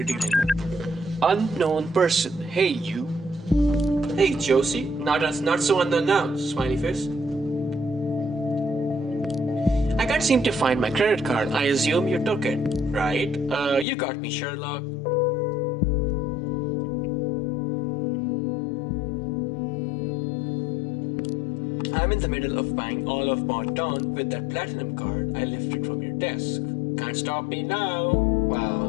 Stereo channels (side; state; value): right; drops out; at 13.9 s